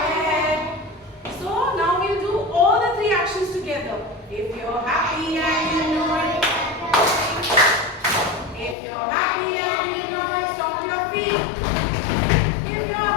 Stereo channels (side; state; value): right; drops out; at 8.8 s